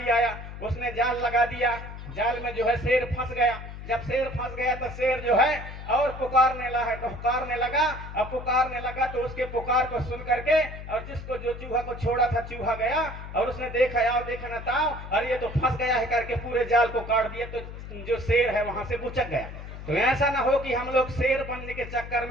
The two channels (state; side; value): noise; left; hum, 11 dB below the sound